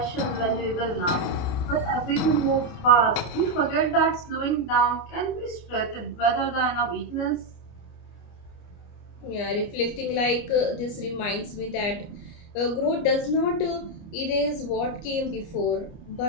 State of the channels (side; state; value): right; late; 29 ms